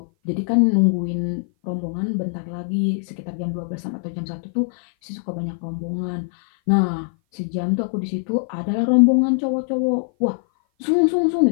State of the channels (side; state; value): right; silent; 57 dB below the other